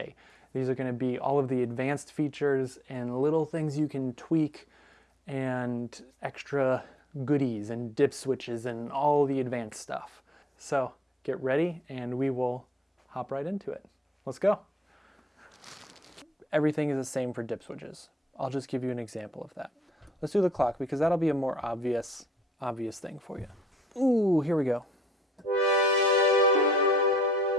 These are going to be all of the advanced features and little things you can tweak and extra goodies and dip switches and all the advanced stuff. So get ready and we will hop right into it. Let's go. Everything is the same for dip switches. I'll just give you an example of that. Let's do the clock because that'll be a more obvious thing for you. Ooh, here we go.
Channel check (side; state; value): both; normal; correlation 0.66